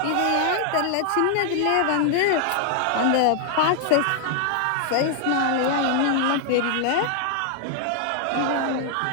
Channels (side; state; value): both; different; correlation 0.00